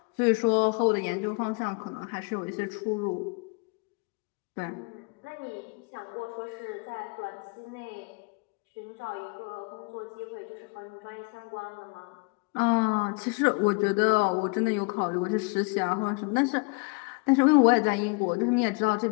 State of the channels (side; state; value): right; quieter; 32.0 dB